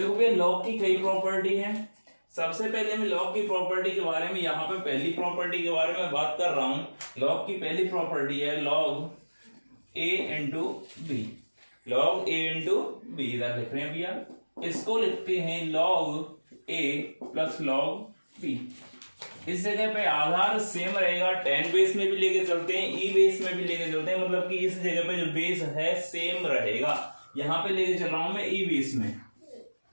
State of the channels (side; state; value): both; inverted; correlation -1.00